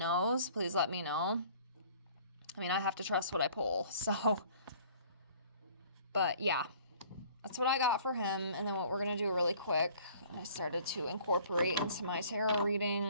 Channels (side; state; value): both; inverted; correlation -0.52